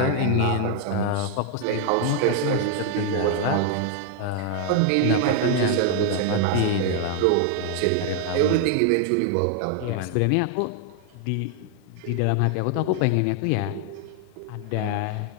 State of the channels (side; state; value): both; different; correlation 0.00